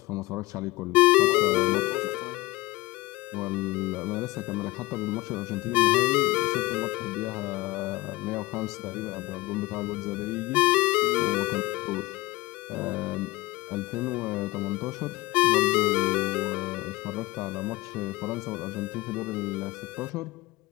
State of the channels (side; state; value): right; quieter; 20.5 dB